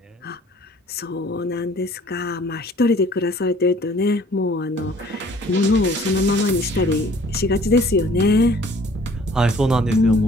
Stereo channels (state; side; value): normal; both; correlation 0.54